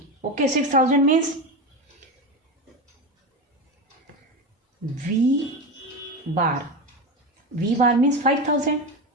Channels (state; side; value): normal; both; correlation 0.20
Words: Okay, 6,000 means V bar. V bar means 5,000.